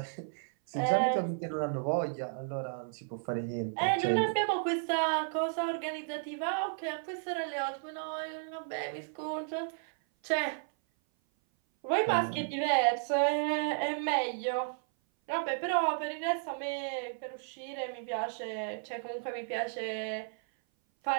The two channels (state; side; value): silent; left; 56 dB below the other